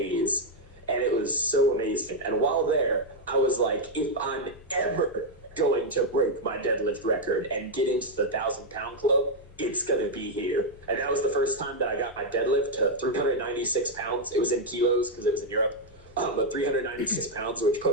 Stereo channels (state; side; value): normal; both; correlation 0.00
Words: and it was so amazing. And while there, I was like, if I'm ever going to break my deadlift record and get into the 1,000-pound club, it's going to be here. And that was the first time that I got my deadlift to 396 pounds. It was in kilos because it was in Europe. But 396 pounds, which